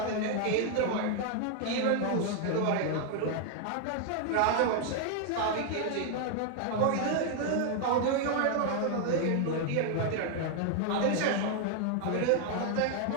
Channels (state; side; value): different; both; correlation 0.00